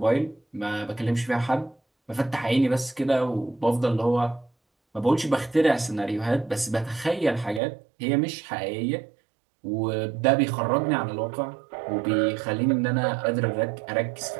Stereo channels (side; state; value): left; drops out; at 7.6 s